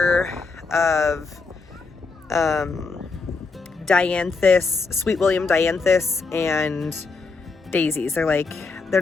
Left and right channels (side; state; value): right; quieter; 4.2 dB